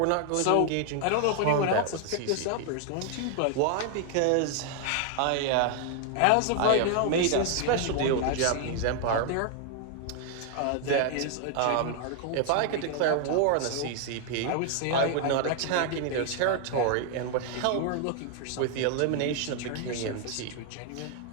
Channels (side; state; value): both; different; correlation 0.00